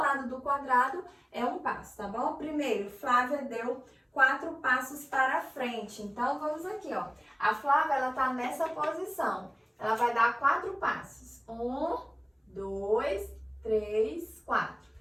do quadrado é um passo, tá bom? Primeiro, Flávia deu 4 passos para frente. Então, vamos aqui, ó. A Flávia, ela tá nessa posição. Ela vai dar 4 passos. 1, 2, 3, 4.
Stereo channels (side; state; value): both; identical; correlation 1.00